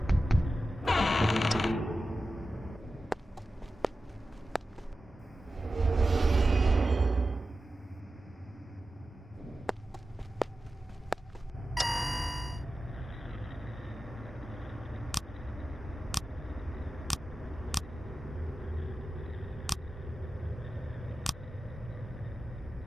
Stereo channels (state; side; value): normal; both; correlation 0.93